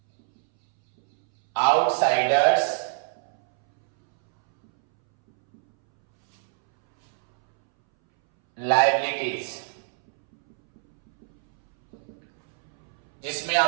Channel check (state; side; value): silent; left; 63 dB below the other